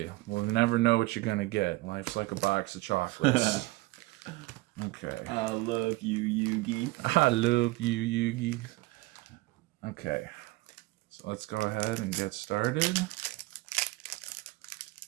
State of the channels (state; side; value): quieter; left; 20.9 dB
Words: We'll never know what you're gonna get. Life's like a box of chocolates. Okay. I love you, Yugi. I love you, Yugi. Okay, so let's go ahead and get started.